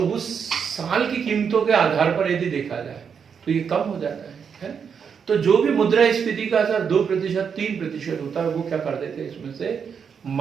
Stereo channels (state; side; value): quieter; left; 6.8 dB